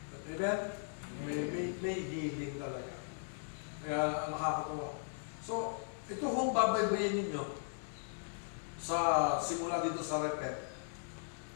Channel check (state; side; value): silent; right; 53 dB below the other